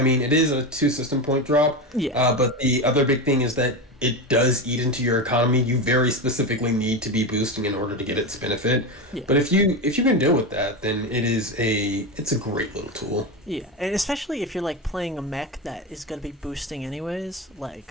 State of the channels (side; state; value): both; normal; correlation 0.18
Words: mean, it is a 2 system point drop. Yeah. But the other big thing is that it does eat into your economy. You very specifically need to be boosting in order to get its benefit. Yeah. But if you can deal with that, then it's a great little tool. Yeah, and especially if you're like playing a mech that is gonna be boosting anyways,